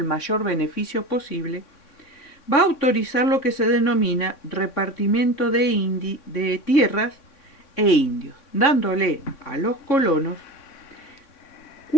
mayor beneficio posible, va a autorizar lo que se denomina repartimiento de tierras e indios, dándole a los colonos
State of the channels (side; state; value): right; late; 3.6 ms